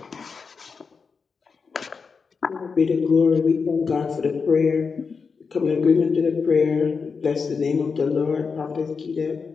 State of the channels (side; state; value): right; quieter; 5.2 dB